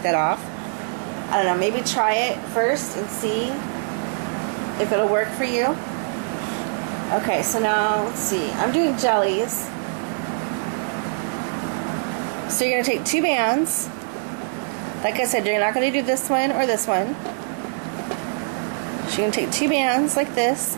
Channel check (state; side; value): silent; left; 56 dB below the other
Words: that off, I don't know, maybe try it first and see if it'll work for you. Okay, so now let's see, I'm doing jellies. So you're going to take 2 bands. Like I said, you're not going to do this one or this one. So you're going to take 2 bands like this